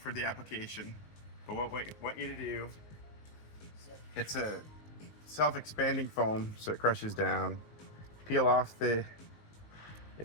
the application, but what we want you to do, it's a self-expanding foam, so it crushes down. Peel off the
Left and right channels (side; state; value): right; late; 19 ms